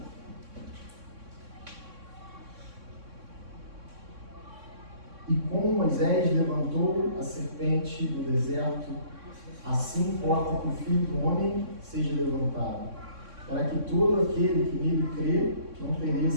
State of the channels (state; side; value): late; left; 3.6 ms